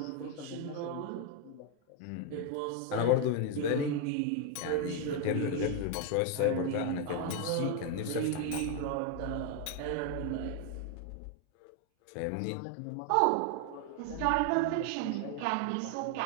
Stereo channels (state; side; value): different; both; correlation 0.01